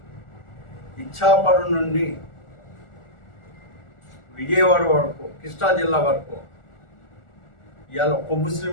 ఇచ్చాపురం నుండి విజయవాడ వరకు, కృష్ణా జిల్లా వరకు ఇవాళ ఒక్క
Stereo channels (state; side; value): late; right; 1.4 ms